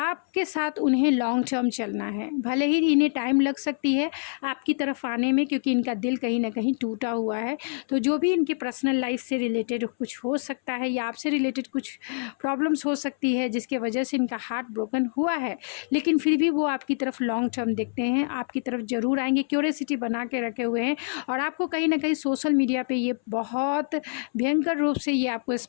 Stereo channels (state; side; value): silent; right; 61 dB below the other